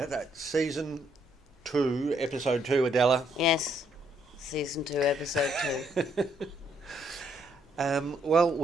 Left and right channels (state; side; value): normal; both; correlation 0.71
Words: that's season 2, episode 2, Adela. Yes, season 2, episode 2. Well,